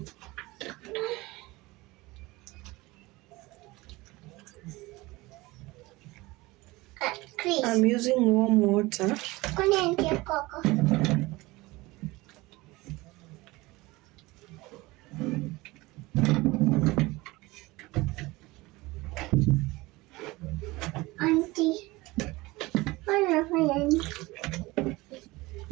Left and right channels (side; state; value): left; quieter; 21.3 dB